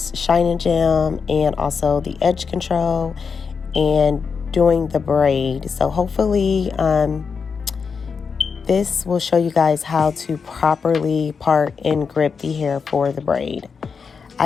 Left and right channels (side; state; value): right; quieter; 5.6 dB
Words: shine and gem and also the edge control and doing the braid. So hopefully this will show you guys how to properly part and grip the hair for the braid.